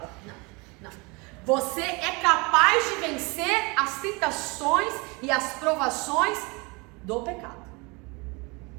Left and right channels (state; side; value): quieter; left; 27.8 dB